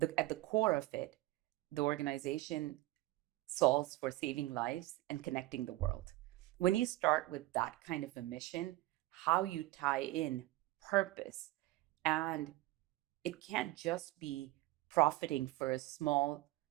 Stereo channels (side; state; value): left; quieter; 18.3 dB